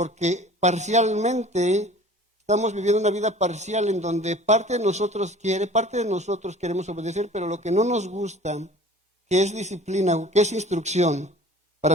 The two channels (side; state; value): both; normal; correlation 0.46